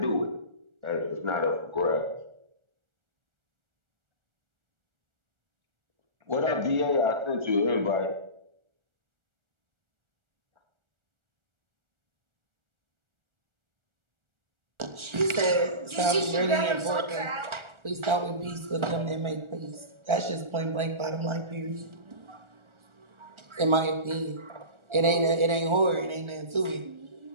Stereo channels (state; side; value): late; left; 1.4 ms